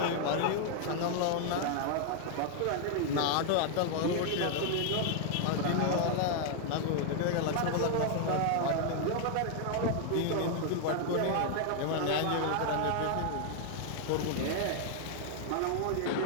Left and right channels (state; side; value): different; both; correlation 0.00